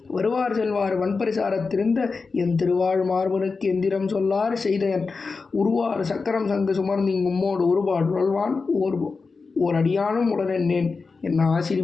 வருவார் செல்வார் வன்பரிசாரத்திருந்த என் திருவாழ்மார்பனுக்கு எந்திரம் சொல்லார் செய்தயன் உருவார் சக்கரம் சங்கு சுமர்ந்திங் உம்மோடு ஒருபாடு உழல்வான் ஓர் அடியானும் உடனேன் என்ன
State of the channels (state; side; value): quieter; right; 4.4 dB